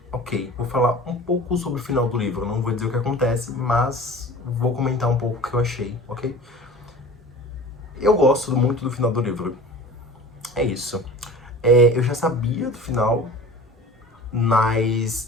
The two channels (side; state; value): both; normal; correlation 0.40